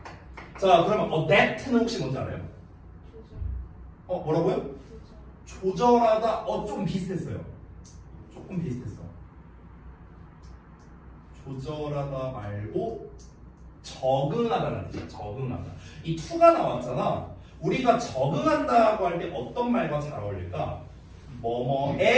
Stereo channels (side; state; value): both; identical; correlation 1.00